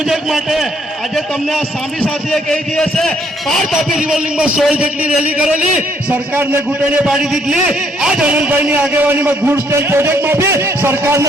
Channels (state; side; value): normal; both; correlation 0.68